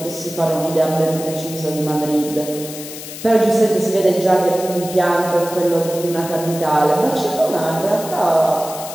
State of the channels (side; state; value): left; noise; hiss, 12 dB below the sound